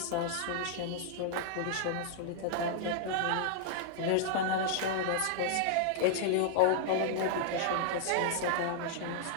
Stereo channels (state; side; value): different; both; correlation -0.01